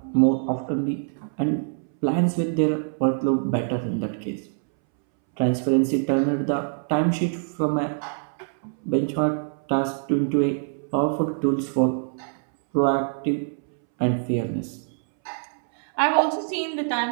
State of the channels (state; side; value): silent; left; 62 dB below the other